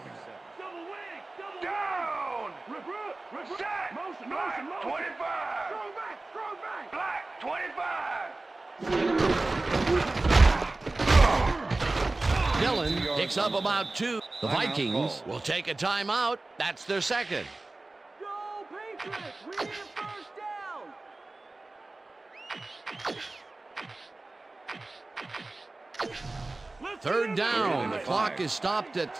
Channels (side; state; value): left; quieter; 3.1 dB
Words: Down. Set. Black, 25. Black, 25. Dillon picks up about 2. The Timeout Vikings call. will take a timeout. That's their second. Go Patriots! We need a first down! Third down. The clock is stopped at Ball